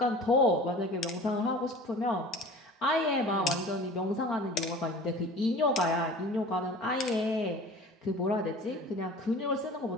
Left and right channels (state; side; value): normal; both; correlation 0.41